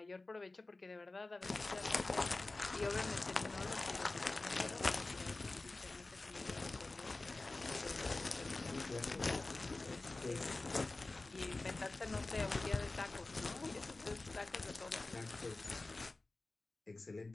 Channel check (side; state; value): right; quieter; 3.2 dB